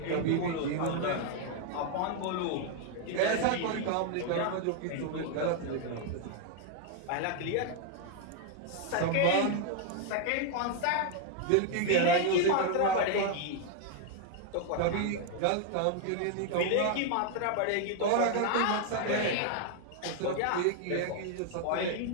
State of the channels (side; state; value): both; different; correlation 0.00